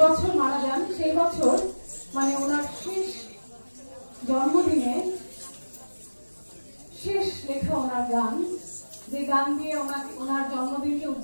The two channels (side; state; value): both; inverted; correlation -1.00